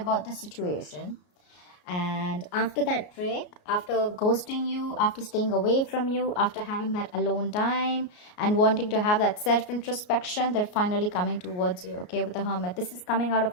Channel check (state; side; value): late; right; 33 ms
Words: the situation. And after that break, after ghosting you, after staying away from you, after having that alone time and wanting to have that self-introspection, they're finally coming towards you, okay, with the Hermit. This is coming out of